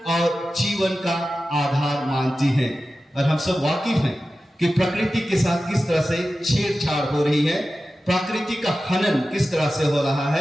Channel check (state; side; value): normal; both; correlation 0.94